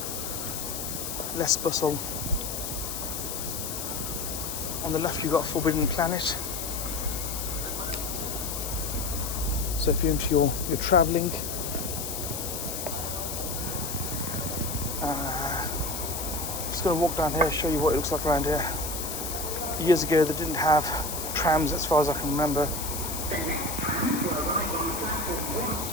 less bustle. On the left you've got Forbidden Planet. So if you're into your travelling, just going to walk down here, show you what it looks like around here. Years ago they didn't have trams as far as I can remember.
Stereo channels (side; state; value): left; noise; hiss, 5 dB below the sound